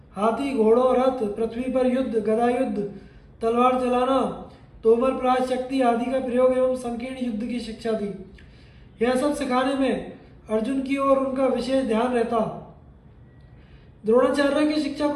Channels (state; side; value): identical; both; correlation 1.00